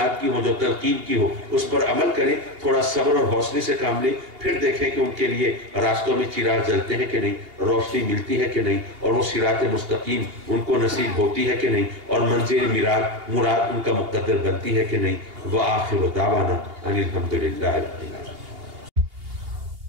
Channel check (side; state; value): left; late; 2.8 ms